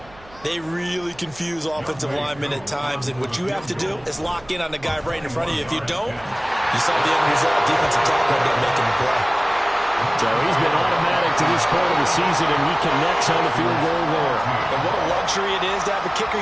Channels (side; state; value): right; noise; hum, 23 dB below the sound